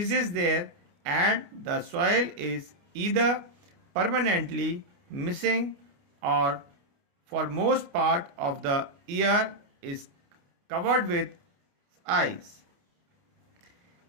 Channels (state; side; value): late; left; 29 ms